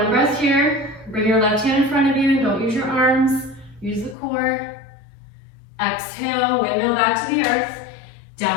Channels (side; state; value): right; drops out; at 4.2 s